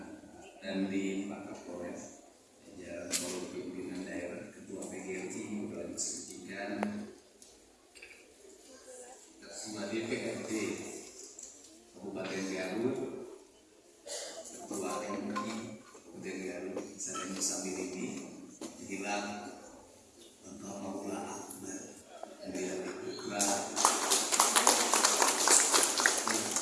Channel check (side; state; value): both; identical; correlation 1.00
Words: dan di Pak Kapolres, jajaran seluruh pimpinan daerah, Ketua PGRI, Kepala Dinas Pendidikan, semua DPRD Kabupaten Garut, Ketua MI Kabupaten Garut, saya Musamir ini bilang Bangka Maula Akbar, Bilang Ikra,